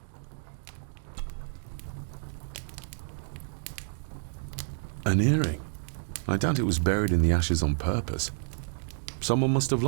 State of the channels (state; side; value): silent; left; digital silence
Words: An earring. I doubt it was buried in the ashes on purpose. Someone must have